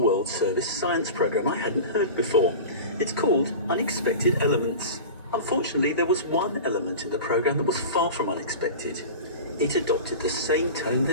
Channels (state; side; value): inverted; both; correlation -0.32